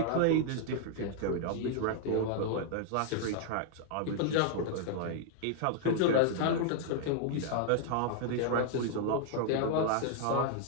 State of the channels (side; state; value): both; different; correlation -0.01